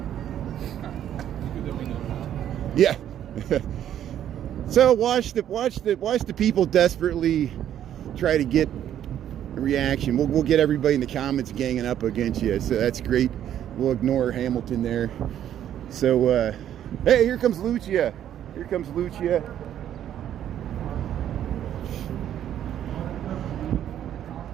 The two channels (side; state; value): left; quieter; 10.7 dB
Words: Yeah. So watch the people desperately try to get a reaction. We'll get everybody in the comments ganging up against you. So that's great. We'll ignore Hamilton there. So hey, here comes Lucia. Here comes Lucia.